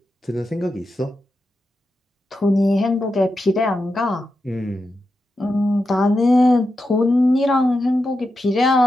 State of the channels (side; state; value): both; normal; correlation 0.88